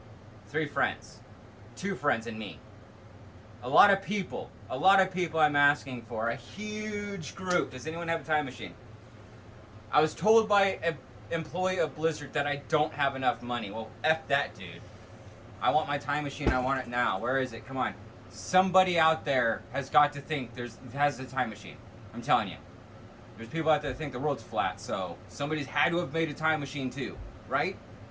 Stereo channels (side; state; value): both; identical; correlation 1.00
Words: 3 friends. 2 friends and me. A lot of people I'm asking for. A huge group. Does anyone have a time machine? I was told by an employee of Blizzard that I don't have enough money. Well, F that, dude. I want my time machine. I want it now. Where is it? Come on. Somebody out there has got to think has a time machine. I'm telling you. There's people out there that think the world's flat, so somebody's had to have made a time machine too, right?